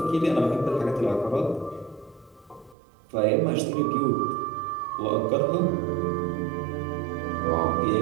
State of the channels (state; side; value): drops out; left; at 2.8 s